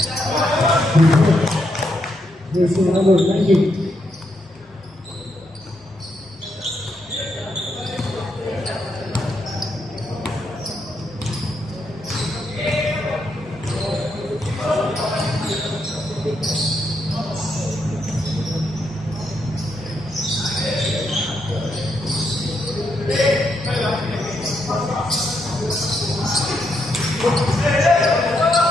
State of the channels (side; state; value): both; normal; correlation 0.79